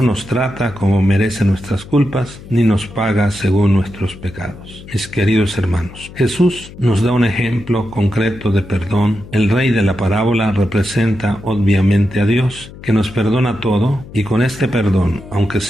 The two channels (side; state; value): left; noise; hum, 17 dB below the sound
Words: nos trata como merece nuestras culpas, ni nos paga según nuestros pecados. Mis queridos hermanos, Jesús nos da un ejemplo concreto de perdón. El rey de la parábola representa obviamente a Dios, que nos perdona todo, y con este perdón, aunque